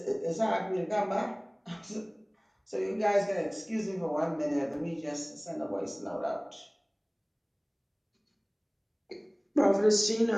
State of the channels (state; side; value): identical; both; correlation 1.00